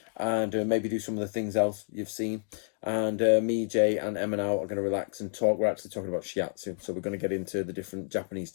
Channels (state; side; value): silent; right; digital silence